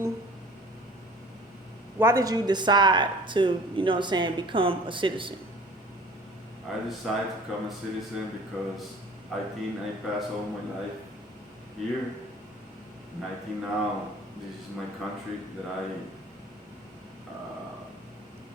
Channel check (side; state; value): both; normal; correlation 0.47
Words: did you decide to, what I'm saying, become a citizen? I decided to become a citizen because I think I passed all my life here, and I think now this is my country uh,